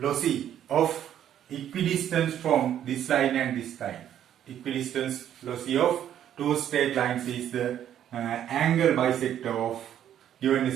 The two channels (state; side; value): quieter; left; 10.5 dB